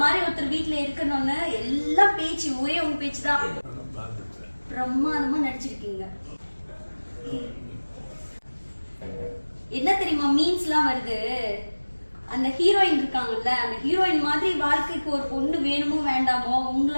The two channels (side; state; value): both; inverted; correlation -1.00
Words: மாதிரி ஒருத்தர் வீட்டுல இருக்கணும்னு எல்லாம் பேச்சு ஒரே உங்க பேச்சு தான். பிரம்மாதமா நடிச்சிருக்கீங்க. என்ன தெரியுமா மீன்ஸ் எல்லாம் வருது, அந்த ஹீரோயின் இருக்காங்கல்ல, அந்த ஹீரோயின் மாதிரி வாழ்க்கைக்கு ஒரு பொண்ணு வேணுமோ வேண்டாமோ